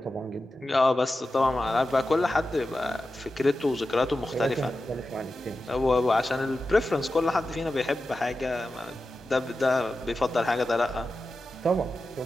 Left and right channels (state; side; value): normal; both; correlation 0.92